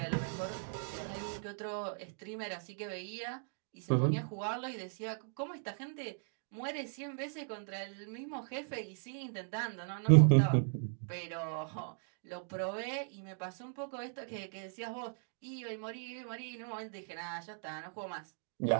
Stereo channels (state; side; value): silent; left; digital silence